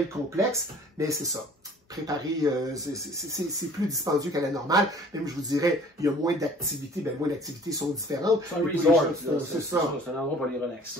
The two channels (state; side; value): normal; both; correlation 0.51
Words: complexe, mais c'est ça. Préparer, c'est plus dispendieux qu'à la normale. Même, je vous dirais, il y a moins d'activités, moins d'activités sont différentes. C'est un resort, c'est ça. C'est un endroit pour les